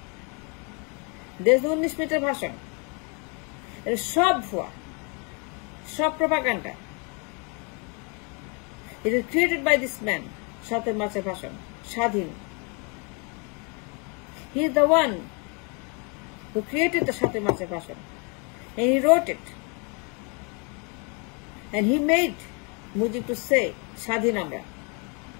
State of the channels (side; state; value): right; quieter; 34.3 dB